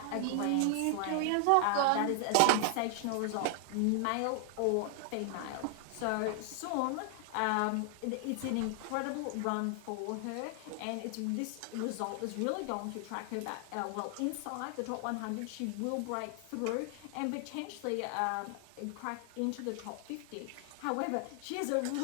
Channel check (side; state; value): both; different; correlation 0.00